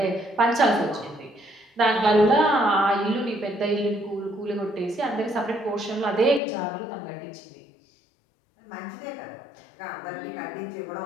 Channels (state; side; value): drops out; right; at 6.4 s